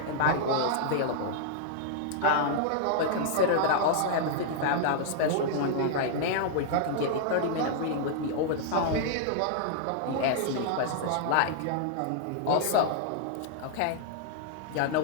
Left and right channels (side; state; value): both; different; correlation -0.01